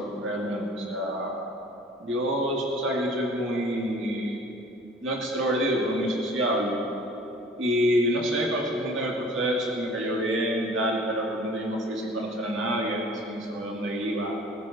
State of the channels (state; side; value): normal; both; correlation 0.49